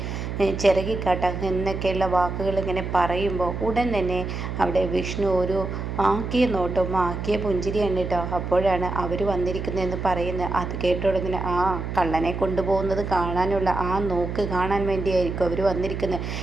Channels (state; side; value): noise; right; hum, 5 dB below the sound